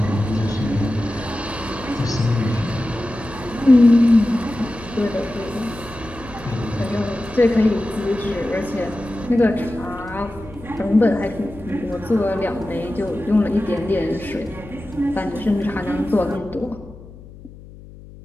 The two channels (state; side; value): noise; left; hum, 18 dB below the sound